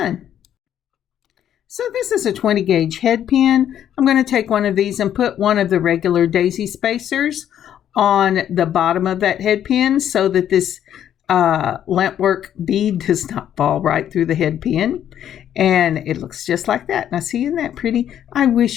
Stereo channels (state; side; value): quieter; right; 10.3 dB